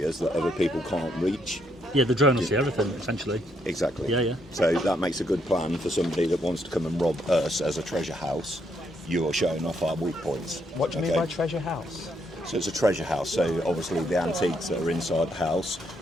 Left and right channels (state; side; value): normal; both; correlation 0.74